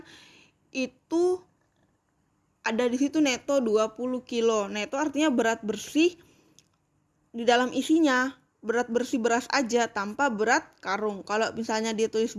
itu ada di situ neto 20 kilo. Neto artinya berat bersih di dalam isinya, berat bersih beras aja tanpa berat karung. Kalau misalnya dia tulis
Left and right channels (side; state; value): both; identical; correlation 1.00